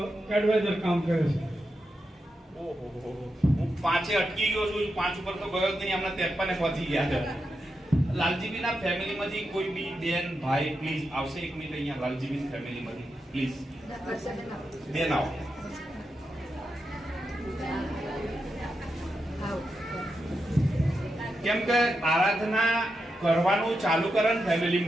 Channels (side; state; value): both; normal; correlation 0.87